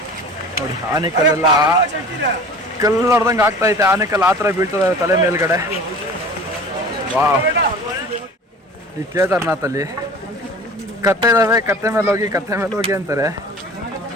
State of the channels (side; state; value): both; normal; correlation 0.41